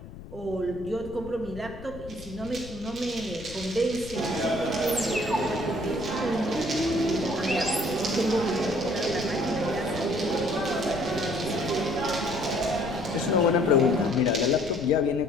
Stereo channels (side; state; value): left; noise; rumble, 14 dB below the sound